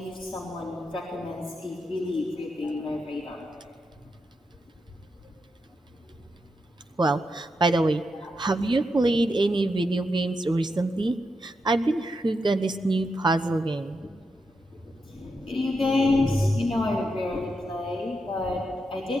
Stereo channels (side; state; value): both; normal; correlation 0.85